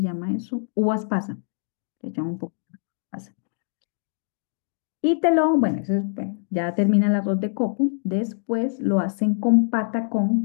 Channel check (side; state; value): right; silent; digital silence